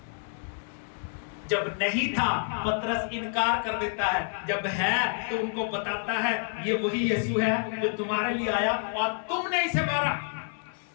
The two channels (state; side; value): silent; right; 59 dB below the other